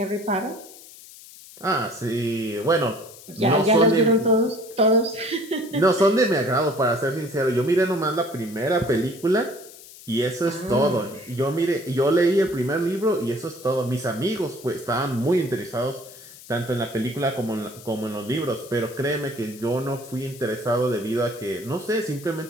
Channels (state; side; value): noise; left; hiss, 19 dB below the sound